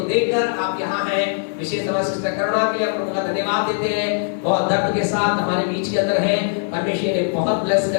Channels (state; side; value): silent; right; digital silence